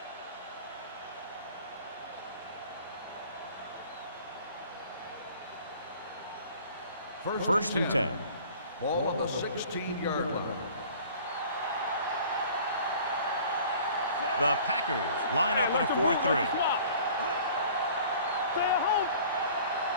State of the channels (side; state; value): both; inverted; correlation -0.49